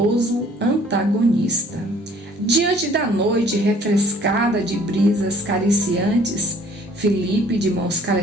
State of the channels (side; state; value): both; normal; correlation 0.56